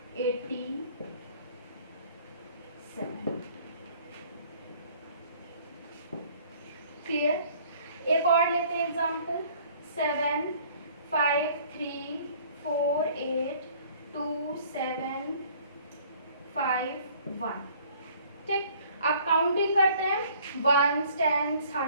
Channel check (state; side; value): inverted; both; correlation -0.55